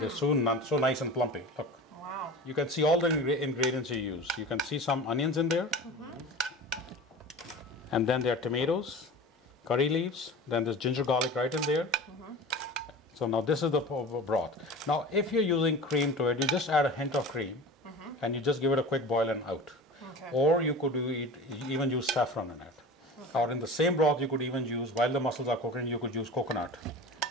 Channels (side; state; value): both; normal; correlation 0.35